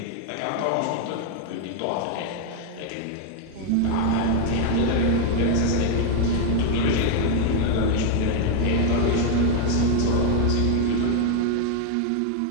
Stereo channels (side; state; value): both; different; correlation 0.00